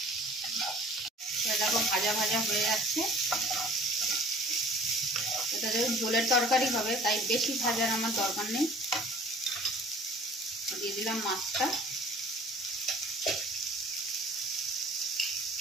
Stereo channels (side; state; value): both; normal; correlation 0.49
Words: দেখো, ভাজা ভাজা হয়ে যাচ্ছে। এটা যেহেতু ঝোলের তরকারি হবে, তাই বেশি ভাজার আমার দরকার নেই। দিয়ে দিলাম মাছটা।